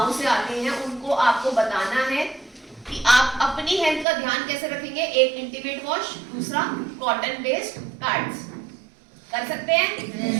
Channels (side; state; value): left; drops out; at 4.0 s